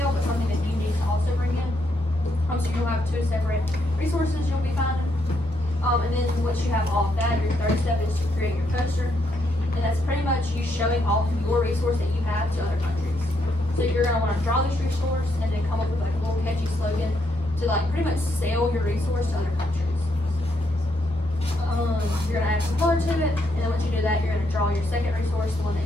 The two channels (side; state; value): both; normal; correlation 0.76